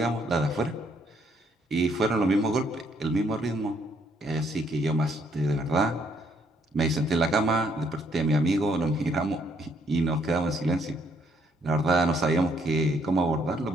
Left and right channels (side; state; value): both; normal; correlation 0.68